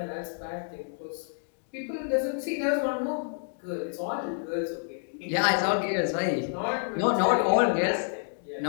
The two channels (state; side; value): silent; right; digital silence